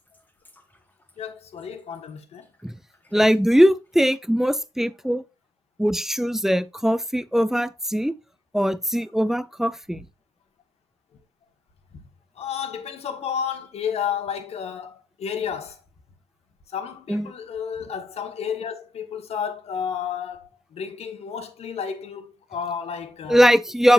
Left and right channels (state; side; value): normal; both; correlation 0.88